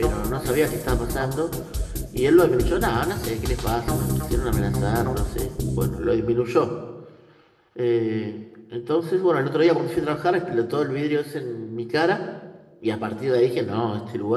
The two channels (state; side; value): identical; both; correlation 1.00